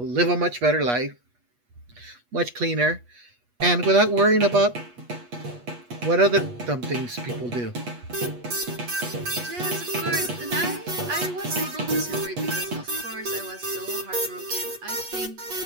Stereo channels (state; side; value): late; left; 8.3 ms